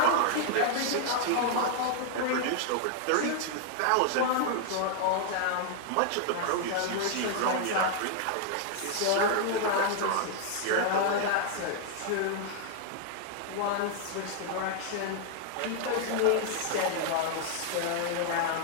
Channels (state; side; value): different; both; correlation 0.00